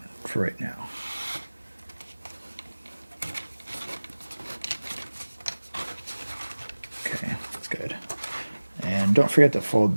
for right now. Okay, that's good. And don't forget to fold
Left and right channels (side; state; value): both; inverted; correlation -1.00